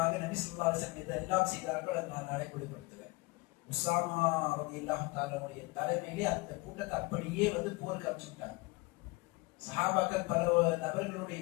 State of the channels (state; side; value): quieter; right; 24.1 dB